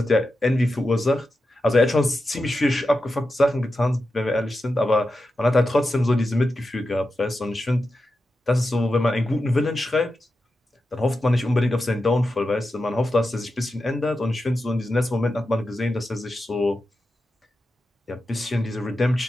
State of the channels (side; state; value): both; normal; correlation 0.90